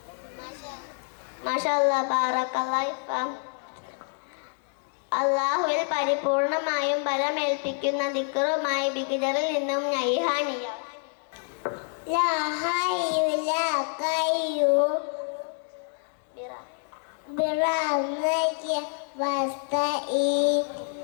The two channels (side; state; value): right; silent; 60 dB below the other